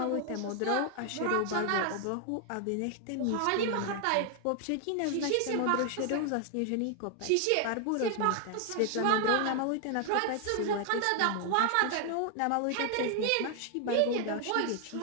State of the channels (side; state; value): both; different; correlation 0.00